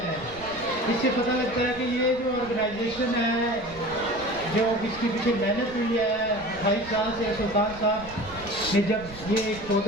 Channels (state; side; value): noise; right; rumble, 18 dB below the sound